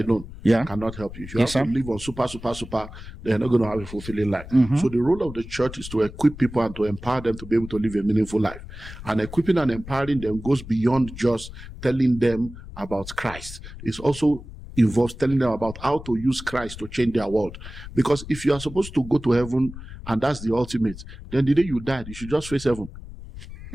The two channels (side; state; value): left; noise; rumble, 13 dB below the sound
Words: cannot help you. If you have to live on super, they're not going to have a fulfilling life. So the role of the church is to equip people and to empower them to be able to live a meaningful life. And equipping and empowering them goes beyond just telling them about Christ. It also involves telling them about how to use Christ to change their world. Because if you are supposed to go to heaven and that's the ultimate, then the day you died, you should just face heaven.